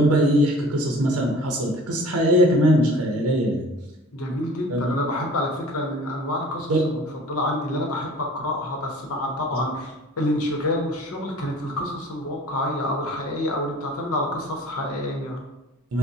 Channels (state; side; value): normal; both; correlation 0.46